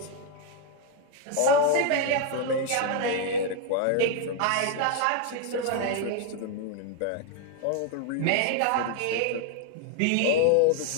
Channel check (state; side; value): different; both; correlation 0.01